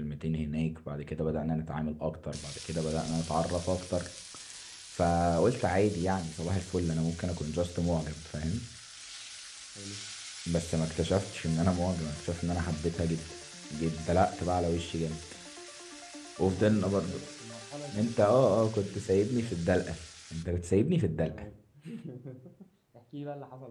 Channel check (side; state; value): both; identical; correlation 1.00